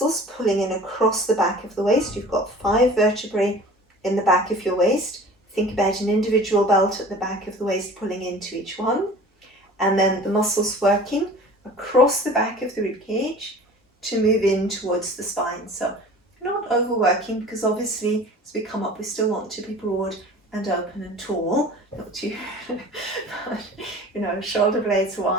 pulling in across the back of the waist. You've got 5 vertebrae in the back of your waist. Think about an individual belt at the back of the waist pulling into each one. And then the muscles working across the back of the rib cage to move in towards the spine. So not overworking, because obviously as we come up we still want to be broad and open and tall, not too but, you know, shoulder blades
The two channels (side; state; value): both; normal; correlation 0.43